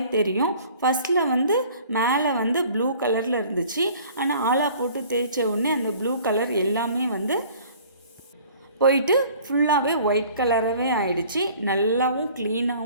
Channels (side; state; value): both; inverted; correlation -0.51